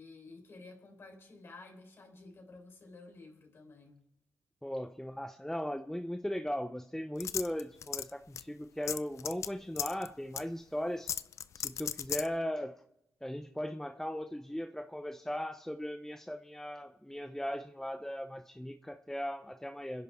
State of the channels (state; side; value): normal; both; correlation 0.86